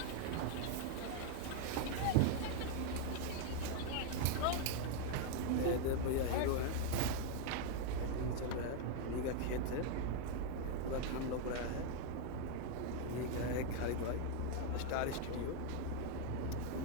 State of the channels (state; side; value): different; both; correlation 0.00